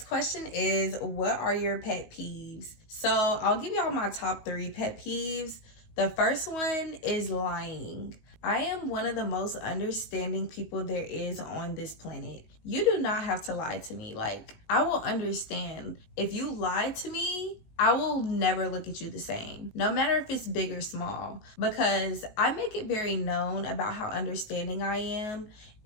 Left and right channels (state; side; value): late; right; 19 ms